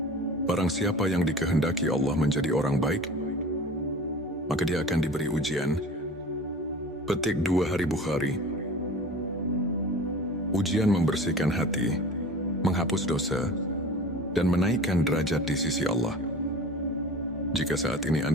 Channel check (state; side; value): normal; both; correlation 0.39